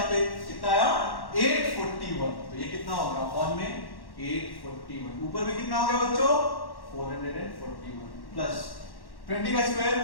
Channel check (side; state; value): right; late; 1.1 ms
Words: पे कितना आया 841, तो ये कितना होगा अपॉन में 841, ऊपर में कितना हो गया बच्चों 441 प्लस 20 का स्क्वायर